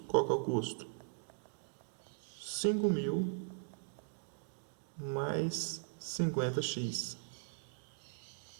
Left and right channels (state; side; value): silent; left; digital silence